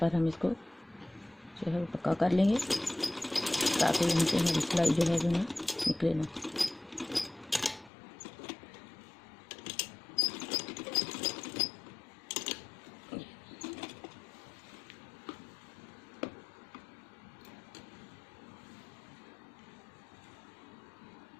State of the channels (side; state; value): right; drops out; at 7.9 s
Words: हम इसको जो है पक्का कर लेंगे ताकि यहाँ से हमारी सिलाई जो है वो ना निकले ना।